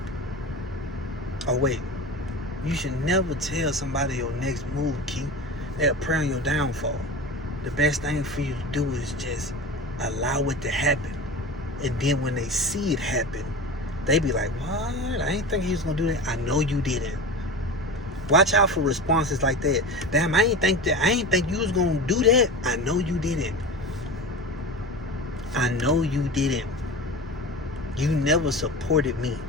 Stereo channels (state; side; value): normal; both; correlation 0.30